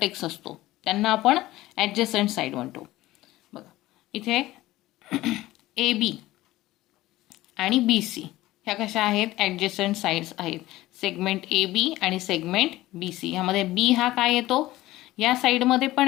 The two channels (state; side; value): quieter; right; 17.0 dB